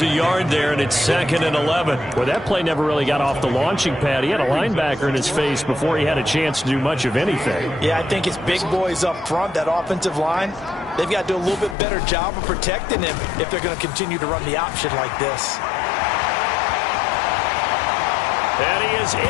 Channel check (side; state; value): right; drops out; at 11.8 s